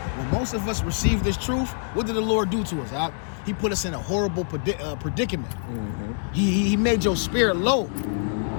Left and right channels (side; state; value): right; silent; digital silence